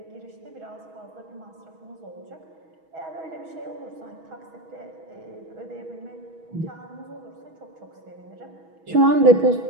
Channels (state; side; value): late; left; 6.2 ms